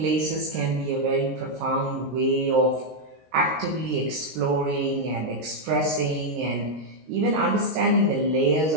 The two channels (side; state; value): left; late; 19 ms